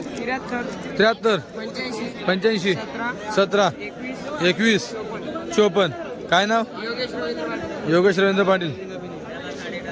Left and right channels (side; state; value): both; identical; correlation 1.00